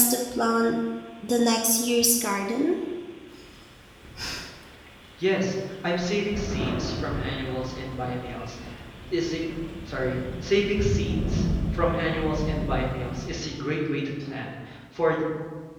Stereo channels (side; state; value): both; identical; correlation 1.00